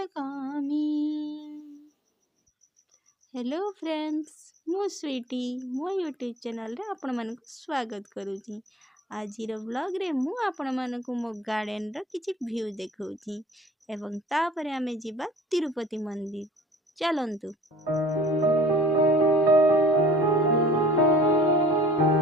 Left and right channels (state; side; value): normal; both; correlation 0.49